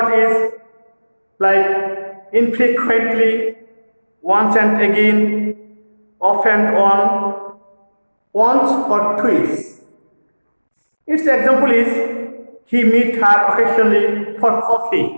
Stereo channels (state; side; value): inverted; both; correlation -1.00